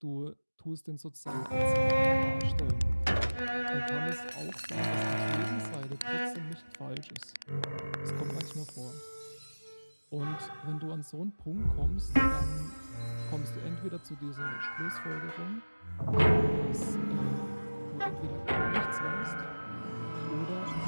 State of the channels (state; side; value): inverted; both; correlation -1.00